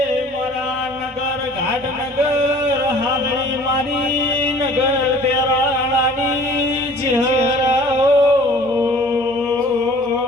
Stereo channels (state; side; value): normal; both; correlation 0.49